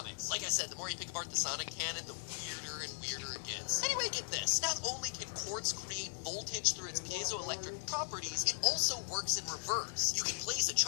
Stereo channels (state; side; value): silent; right; digital silence